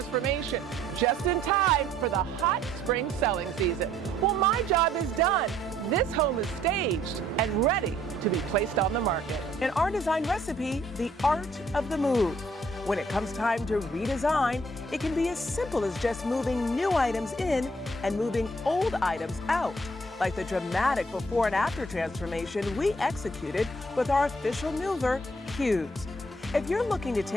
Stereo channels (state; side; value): normal; both; correlation 0.64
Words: just in time for the hot spring selling season. Well, my job is done. This home is staged and ready to be placed on the market. In our design recipe, the art of the move. When it comes time to redesign, it can be as simple as just moving new items in and moving old items out, like the dramatic before and after transformation we executed with our official mover, Cubes. If you're looking to